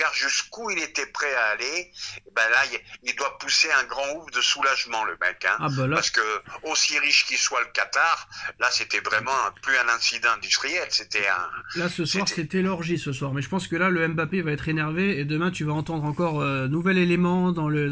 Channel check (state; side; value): identical; both; correlation 1.00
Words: jusqu'où il était prêt à aller. Là, il doit pousser un grand ouf de soulagement, le mec, hein, parce que aussi riche qu'il soit le Qatar, là c'était vraiment plus un incident industriel, c'était un. Là ce soir c'était l'orgie ce soir, mais je pense que là le Mbappé va être énervé et demain tu vas entendre encore nouvel élément dans